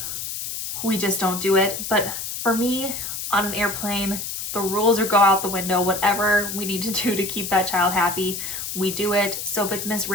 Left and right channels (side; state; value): left; noise; hiss, 6 dB below the sound